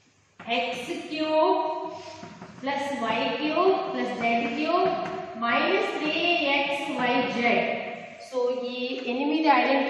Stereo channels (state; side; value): identical; both; correlation 1.00